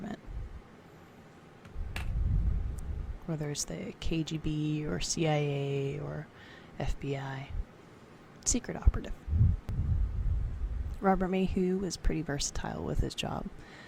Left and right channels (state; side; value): identical; both; correlation 1.00